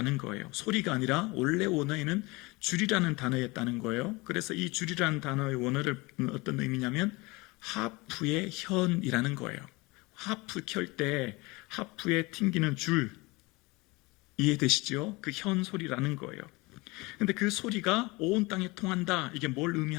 거예요. 소리가 아니라 원래 원어에는 줄이라는 단어였다는 거예요. 그래서 이 줄이라는 단어의 원어를 어떤 의미냐면 하프의 현이라는 거예요. 하프 켤 때 하프에 튕기는 줄 이해되시죠? 그 현 소리라는 거예요. 근데 그 소리가 온 땅에 통한다. 이게 뭘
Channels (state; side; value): quieter; right; 24.1 dB